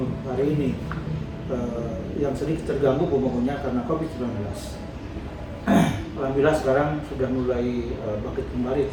hari ini yang sedikit terganggu pembangunannya karena COVID-19. Alhamdulillah sekarang sudah mulai bangkit kembali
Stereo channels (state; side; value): identical; both; correlation 1.00